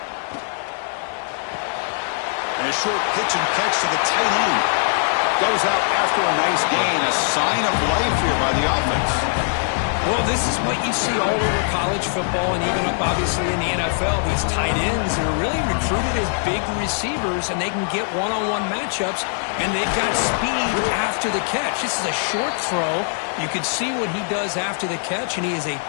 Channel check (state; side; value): silent; right; digital silence